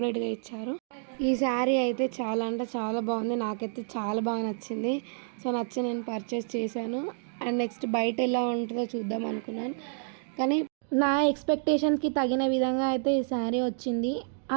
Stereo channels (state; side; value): silent; left; digital silence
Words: ఇచ్చారు. ఈ శారీ అయితే చాలా అంటే చాలా బాగుంది. నాకైతే చాలా బాగా నచ్చింది. సో నచ్చి నేను పర్చేస్ చేశాను. అండ్ నెక్స్ట్ బయట ఎలా ఉంటుందో చూద్దాం అనుకున్నాను, కానీ నా ఎక్స్పెక్టేషన్కి తగిన విధంగా అయితే ఈ శారీ వచ్చింది.